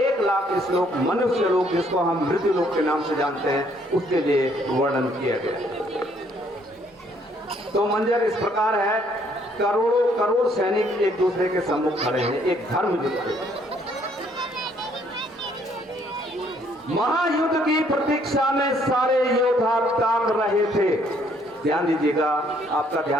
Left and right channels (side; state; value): both; normal; correlation 0.66